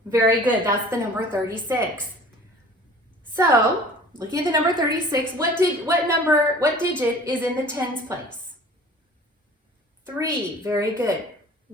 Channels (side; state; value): both; normal; correlation 0.46